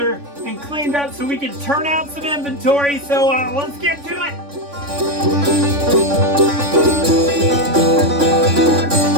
and cleaned up so we can turn out some inventory. So let's get to it.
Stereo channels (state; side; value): late; left; 3.5 ms